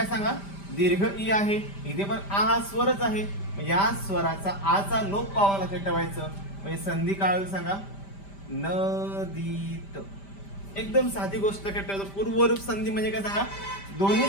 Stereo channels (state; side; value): late; right; 5.1 ms